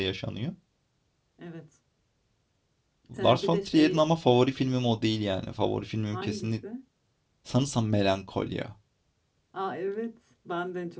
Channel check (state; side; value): identical; both; correlation 1.00